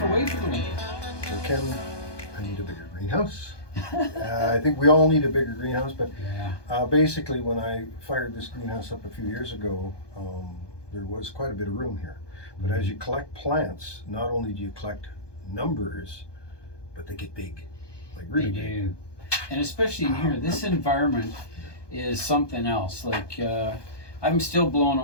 away for the winter. So Ken, I need a bigger greenhouse. I think we all need a bigger greenhouse, but basically when I fired this greenhouse up a few years ago, there was quite a bit of room here. But as you collect plants, not only do you collect numbers, but they get big, like really big. Do. And especially in here, this environment is something else. Like I'm still blown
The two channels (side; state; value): right; late; 1.2 ms